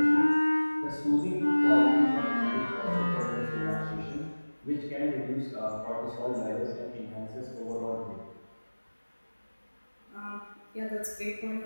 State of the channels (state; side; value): inverted; both; correlation -1.00